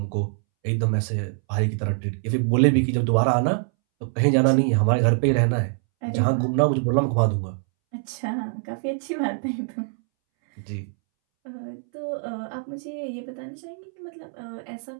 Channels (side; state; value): left; silent; 62 dB below the other